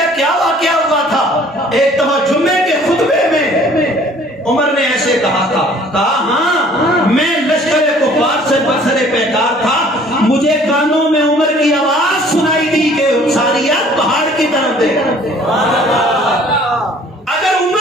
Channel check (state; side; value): normal; both; correlation 0.54